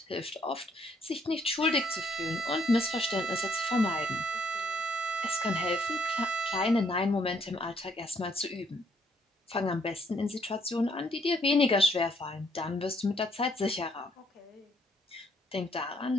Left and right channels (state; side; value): normal; both; correlation 0.69